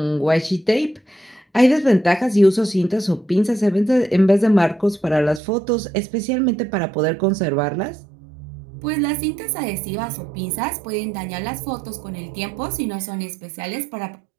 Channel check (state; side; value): drops out; left; at 5.4 s